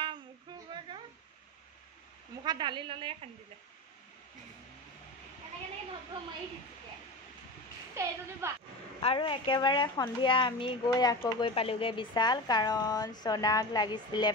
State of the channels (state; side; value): normal; both; correlation 0.27